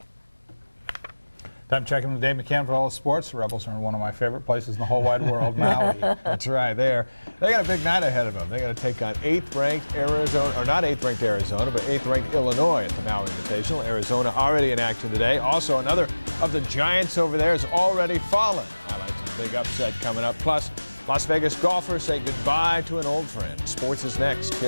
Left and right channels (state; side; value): inverted; both; correlation -1.00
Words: Time checking with Dave McCann for all the sports. The Rebels are in one of my favorite places in the whole wide world, Maui. That's right. They got a big night ahead of them. They got to take on 8th-ranked Arizona, or not 8th-ranked Arizona, but 8th-ranked Illinois at the Maui Invitational. Arizona already in action today. Also, another of the Giants over there has already fallen. Highlights a big upset coming up. Plus, Las Vegas golfers say goodbye to an old friend. Sports is next